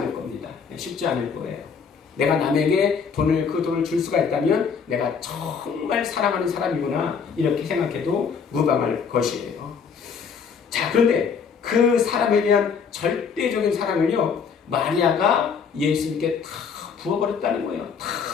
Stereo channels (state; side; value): quieter; right; 6.2 dB